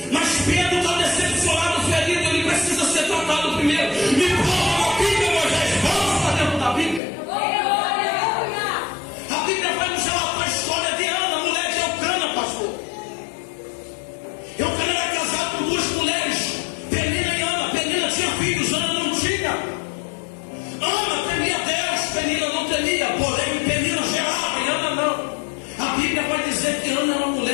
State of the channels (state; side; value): drops out; right; at 7.0 s